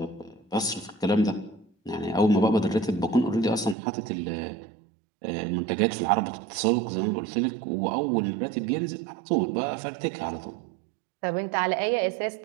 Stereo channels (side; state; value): left; drops out; at 3.8 s